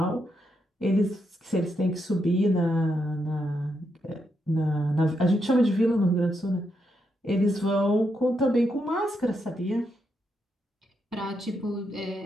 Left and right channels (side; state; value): both; normal; correlation 0.81